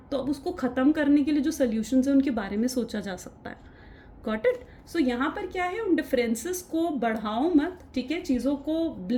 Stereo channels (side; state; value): both; identical; correlation 1.00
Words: तो अब उसको ख़त्म करने के लिए जो सोल्यूशंस हैं उनके बारे में सोचा जा सकता है। Got it. सो यहाँ पर क्या है, उन डिफरेंसेस को बढ़ाओ मत, ठीक है। चीज़ों को